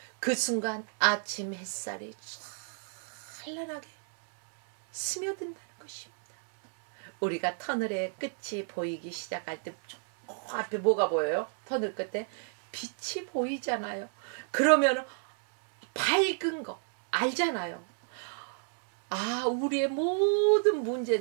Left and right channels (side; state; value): left; silent; 56 dB below the other